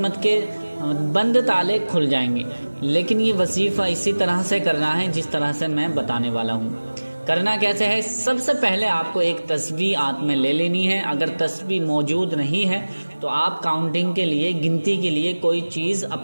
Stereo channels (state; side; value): inverted; both; correlation -1.00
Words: کے بند تالے کھل جائیں گے۔ لیکن یہ وظیفہ اسی طرح سے کرنا ہے جس طرح سے میں بتانے والا ہوں۔ کرنا کیسے ہے؟ سب سے پہلے آپ کو ایک تسبیح ہاتھ میں لے لینی ہے۔ اگر تسبیح موجود نہیں ہے تو آپ کاؤنٹنگ کے لیے، گنتی کے لیے کوئی چیز